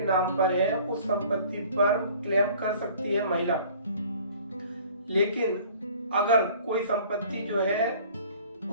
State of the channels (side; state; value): both; inverted; correlation -0.50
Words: नाम पर है, उस संपत्ति पर क्लेम कर सकती है महिला। लेकिन अगर कोई संपत्ति जो है